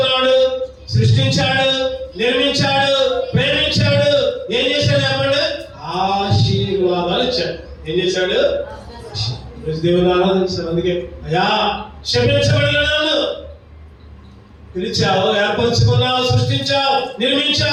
సృష్టించాడు, నిర్మించాడు, ప్రేమించాడు. ఏం చేశాడు చెప్పండి? ఆశీర్వాదాలు ఇచ్చాడు. ఏం చేశాడు? దేవుని ఆరాధించాడు. అందుకే అయ్యా క్షమించబడిన నన్ను పిలిచావు, ఏర్పరచుకున్నావు, సృష్టించావు,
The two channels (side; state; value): both; identical; correlation 1.00